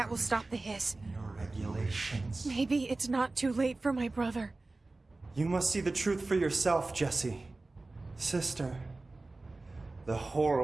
will stop the hiss. Your regulations. Maybe it's not too late for my brother. You must see the truth for yourself, Jesse. Sister. The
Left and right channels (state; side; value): quieter; left; 3.2 dB